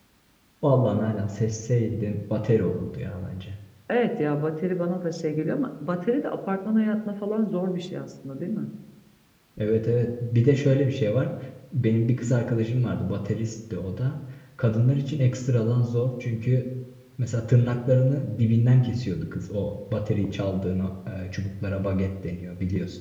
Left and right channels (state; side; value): identical; both; correlation 1.00